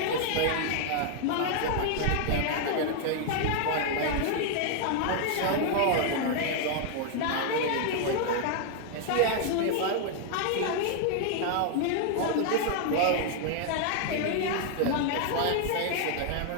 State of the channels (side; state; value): both; different; correlation 0.00